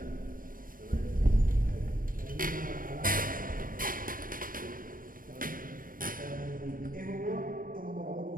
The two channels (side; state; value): left; late; 0.41 ms